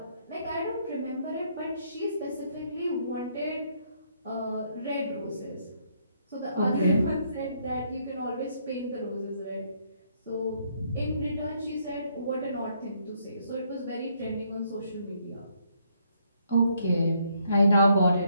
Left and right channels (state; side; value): inverted; both; correlation -0.71